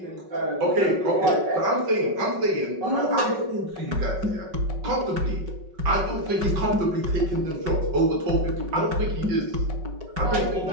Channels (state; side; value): late; left; 5.3 ms